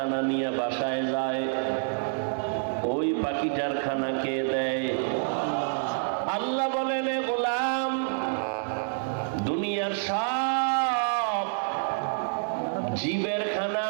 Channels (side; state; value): left; silent; 59 dB below the other